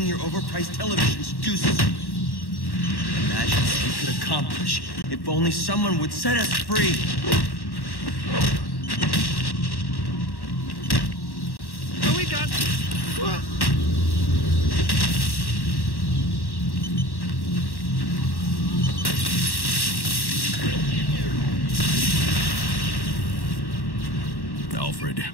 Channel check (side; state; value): right; late; 1.1 ms